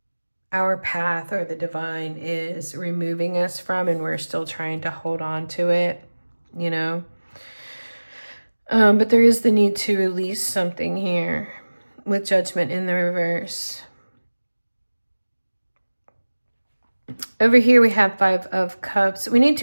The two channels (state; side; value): inverted; both; correlation -1.00